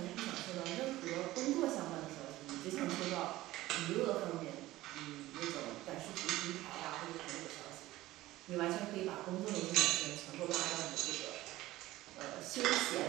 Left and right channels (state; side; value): quieter; left; 16.8 dB